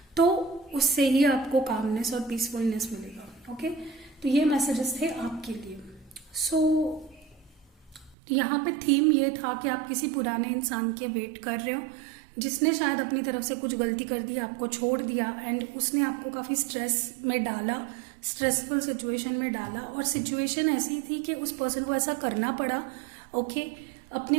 तो उससे ही आपको कामनेस और पीसफुलनेस मिलेगा। ओके, तो ये मैसेजेस थे आपके लिए। सो यहाँ पे थीम ये था कि आप किसी पुराने इंसान के वेट कर रहे हो जिसने शायद अपनी तरफ से कुछ गलती कर दी, आपको छोड़ दिया, एंड उसने आपको काफ़ी स्ट्रेस में डाला, स्ट्रेसफुल सिचुएशन में डाला। और सिचुएशन ऐसी थी कि उस पर्सन को ऐसा करना पड़ा, ओके,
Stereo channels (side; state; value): left; drops out; at 8.2 s